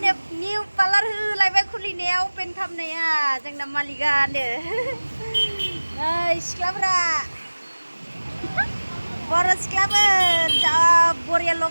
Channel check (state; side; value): inverted; both; correlation -1.00